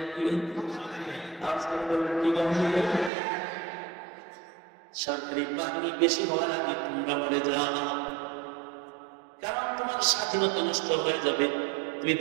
কি সরকারি বাহিনী বেশি হওয়ার আগে তোমরা মরে যাও, কারণ তোমার স্বাধীনতা নষ্ট হয়ে যাবে, তুমি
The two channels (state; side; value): drops out; left; at 3.1 s